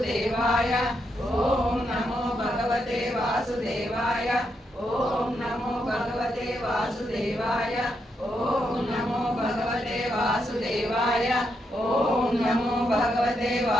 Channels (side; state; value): both; normal; correlation 0.81